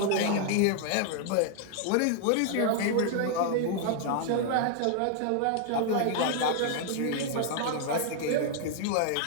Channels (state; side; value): different; both; correlation 0.00